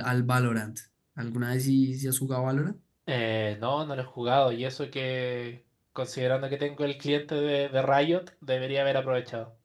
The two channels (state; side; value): identical; both; correlation 1.00